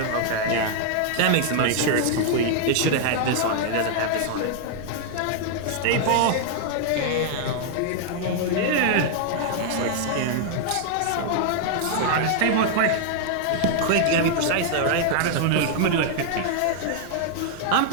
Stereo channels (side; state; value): both; different; correlation 0.00